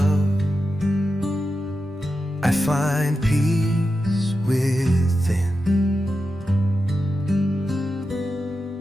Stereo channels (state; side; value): normal; both; correlation 0.90